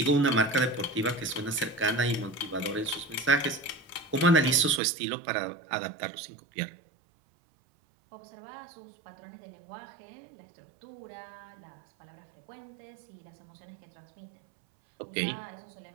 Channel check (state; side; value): drops out; left; at 4.8 s